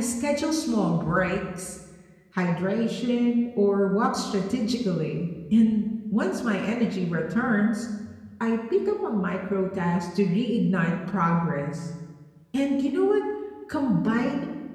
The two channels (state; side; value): identical; both; correlation 1.00